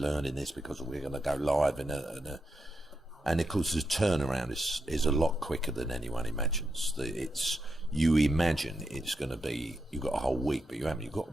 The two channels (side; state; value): both; normal; correlation 0.85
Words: this, because we're going to go live and of course the turnaround is a lot quicker than anyone imagines. You imagine it's going to be, you've got a whole week, but you haven't. You've got